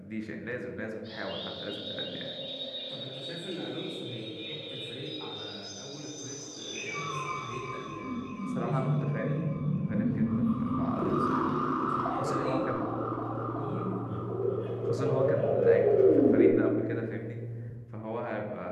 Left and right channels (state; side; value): identical; both; correlation 1.00